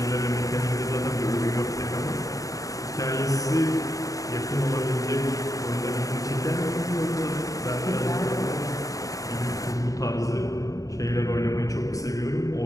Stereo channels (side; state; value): right; late; 0.16 ms